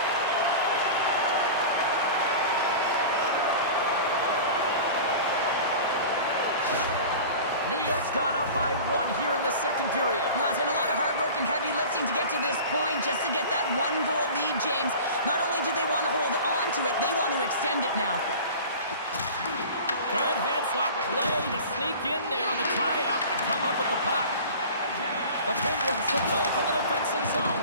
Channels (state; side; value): inverted; both; correlation -0.37